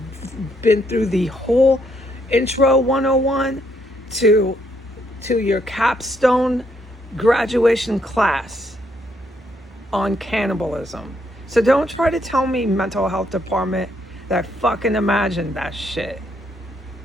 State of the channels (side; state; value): both; normal; correlation 0.73